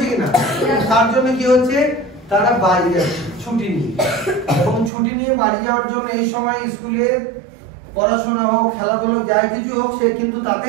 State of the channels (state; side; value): drops out; left; at 4.9 s